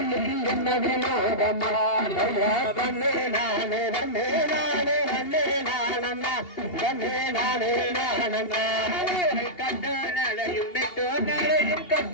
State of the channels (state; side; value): late; right; 2.8 ms